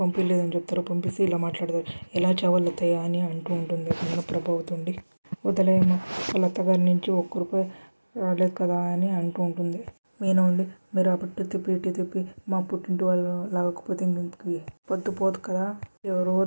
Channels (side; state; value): both; inverted; correlation -1.00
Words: చెప్తారు, పంపిస్తే ఇలా మాట్లాడతారు. ఎలా చావాలి అత్తయ్య అని అంటూ ఉంటుంది. అక్కడున్న ప్రభావతి ఉండి వదిలేయమ్మ, వాళ్ళ అత్తగారి నుంచి ₹1 రాలేదు కదా అని అంటూ ఉంటుంది. మీనా ఉండి మీరు అప్పుడు తిప్పి ఇటు తిప్పి మా పుట్టింటి వాళ్ళు లాగకపోతే ఇంటికి పొద్దు పోదు కదా. ఎవరో